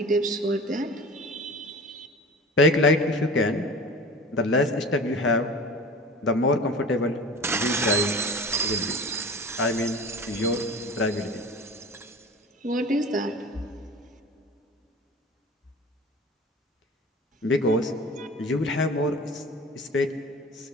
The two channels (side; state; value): both; normal; correlation 0.38